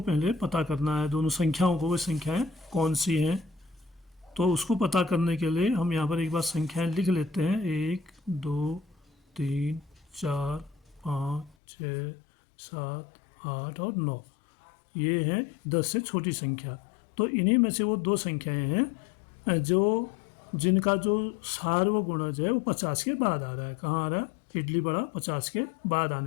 पता करना है, दोनों संख्याओं को, वे संख्याएं कौन सी हैं। तो उसको पता करने के लिए हम यहाँ पर एक बार संख्याएं लिख लेते हैं, 1, 2, 3, 4, 5, 6, 7, 8 और 9। ये हैं 10 से छोटी संख्या। तो इन्हीं में से वो 2 संख्याएं हैं जिनका जो सार्वगुणज है वो 50 के बाद आ रहा है। कहाँ आ रहा है? इडली बड़ा 50 के बाद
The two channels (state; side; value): drops out; right; at 11.6 s